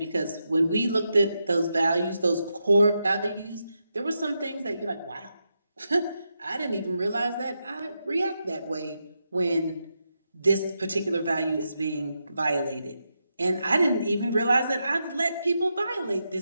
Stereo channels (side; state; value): both; inverted; correlation -0.85